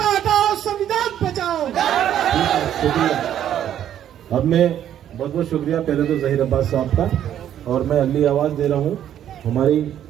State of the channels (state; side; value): quieter; left; 10.6 dB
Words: अब मैं बहुत बहुत शुक्रिया पहले तो जहीर अब्बास साहब का, और मैं अगली आवाज दे रहा हूं हमारी